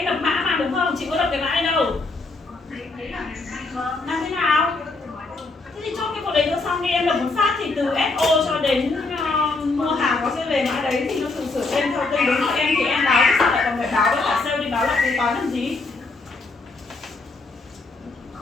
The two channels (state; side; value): quieter; right; 3.6 dB